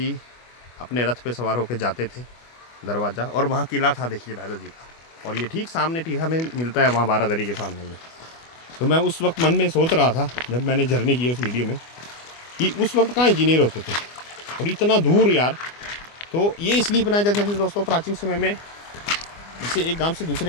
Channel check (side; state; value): right; late; 24 ms